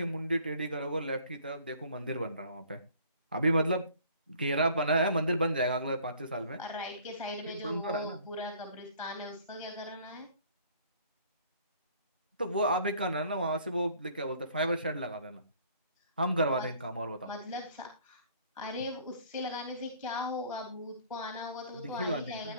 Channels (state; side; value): inverted; both; correlation -0.55